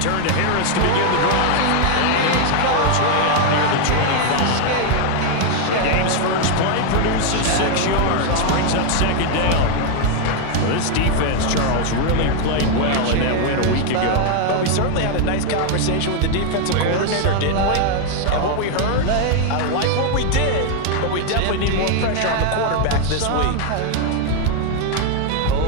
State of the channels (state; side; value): different; both; correlation 0.01